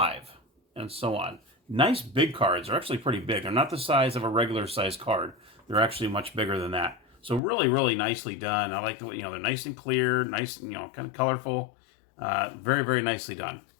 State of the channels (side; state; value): right; drops out; at 7.4 s